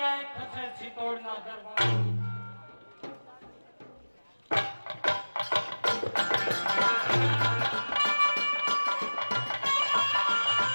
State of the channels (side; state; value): both; inverted; correlation -1.00